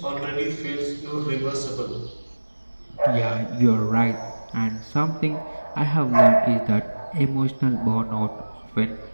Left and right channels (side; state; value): both; inverted; correlation -1.00